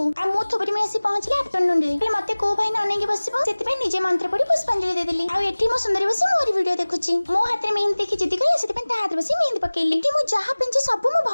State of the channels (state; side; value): inverted; both; correlation -1.00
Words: आ मो थोपर में आसी पहुंचले आफ्टरनून रे मते को भाई न अनेगी बसिबो सेति पे निजे मंत्र पड़ी पुष्पांजलि दे देली आ एठी मो सुंदरी बसी मोर वीडियो देखुची मो हाथ में मेहंदी देखि जिदी गले सेति पे ता हाथ बसी मेहंदी पकेली एठी मो जहा पिंची सब मो